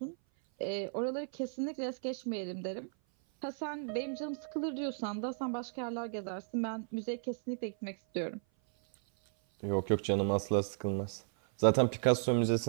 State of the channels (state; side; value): silent; left; 55 dB below the other